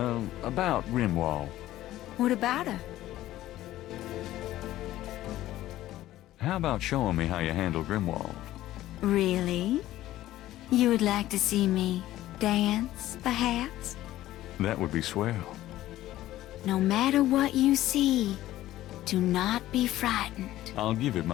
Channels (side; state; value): right; quieter; 14.7 dB